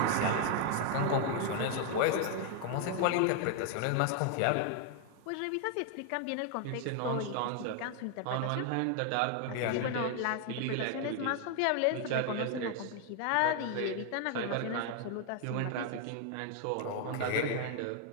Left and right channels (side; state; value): both; different; correlation 0.00